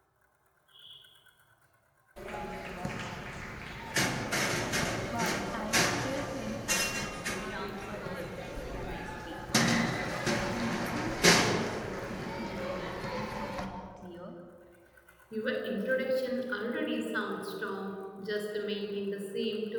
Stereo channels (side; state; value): both; identical; correlation 1.00